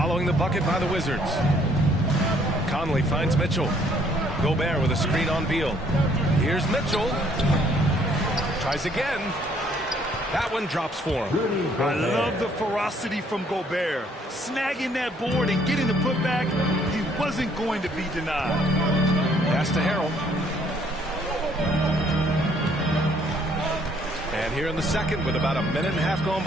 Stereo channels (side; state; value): both; normal; correlation 0.64